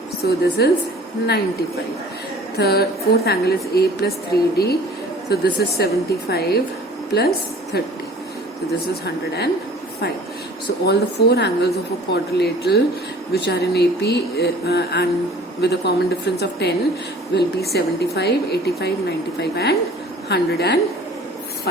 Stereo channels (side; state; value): both; normal; correlation 0.48